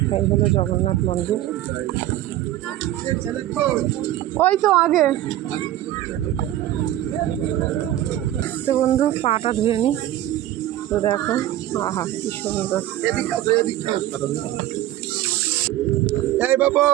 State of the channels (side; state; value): left; quieter; 13.7 dB